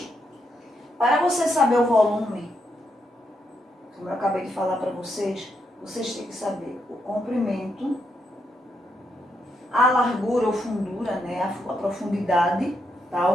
para você saber o volume, como eu acabei de falar para vocês, vocês têm que saber o comprimento, a largura ou fundura, a profundidade, tá?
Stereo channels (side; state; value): both; normal; correlation 0.80